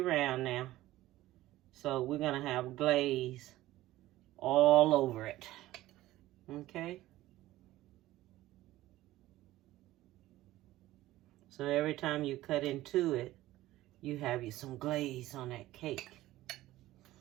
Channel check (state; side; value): quieter; left; 16.0 dB